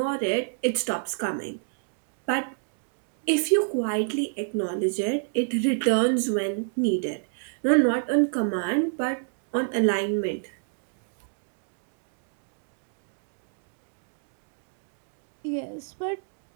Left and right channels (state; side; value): silent; left; digital silence